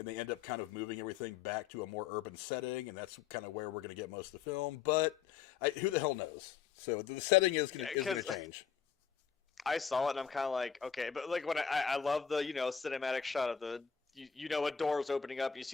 they end up kind of moving everything back to a more urban setting, and that's kind of where we're going to get most of the film. But who the hell knows? So the setting is going to change. I saw it, and I'm kind of like, okay, but like when I love the cinematic shot of the a door is opening up, you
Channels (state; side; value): quieter; right; 7.3 dB